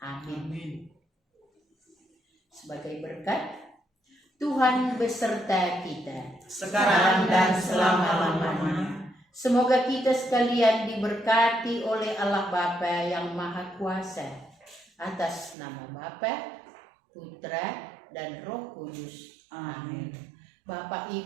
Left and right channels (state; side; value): drops out; left; at 15.6 s